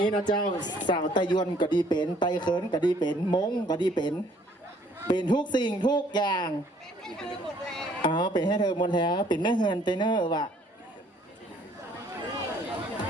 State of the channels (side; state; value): both; normal; correlation 0.61